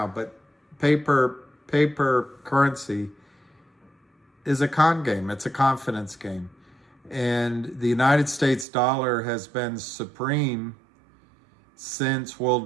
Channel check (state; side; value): drops out; left; at 8.7 s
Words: but paper currency is a con game. It's a confidence game. And the United States dollar has been supreme since